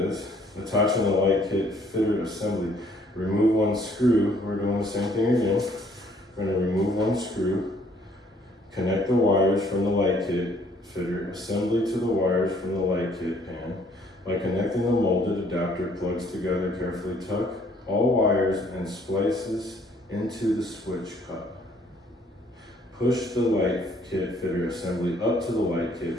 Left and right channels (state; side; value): normal; both; correlation 0.62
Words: attaching the light kit fitter assembly. Remove one screw. We're doing the same thing again. We're going to remove one screw. Connect the wires from the light kit fitter assembly to the wires from the light kit pan. By connecting the molded adapter plugs together, carefully tuck all wires and splices into the switch cup. Push the light kit fitter assembly up to the light